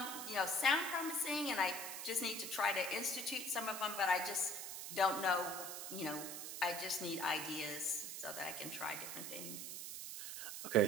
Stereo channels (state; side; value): noise; right; hiss, 6 dB below the sound